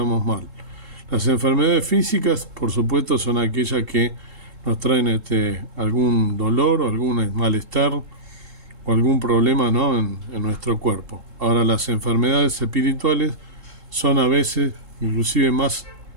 mal. Las enfermedades físicas, por supuesto, son aquellas que nos traen algún dolor o algún malestar o algún problema, ¿no?, en nuestro cuerpo. Ahora, las enfermedades espirituales son a veces inclusive más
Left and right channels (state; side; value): late; left; 3.7 ms